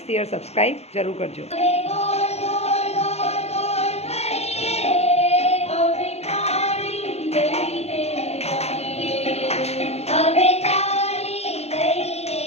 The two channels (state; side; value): late; right; 0.31 ms